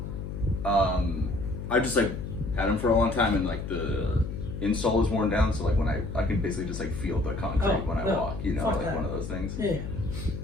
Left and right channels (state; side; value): noise; left; hum, 6 dB below the sound